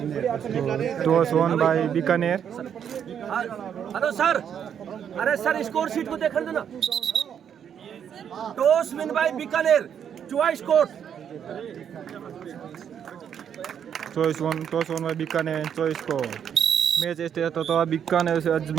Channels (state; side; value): quieter; left; 8.5 dB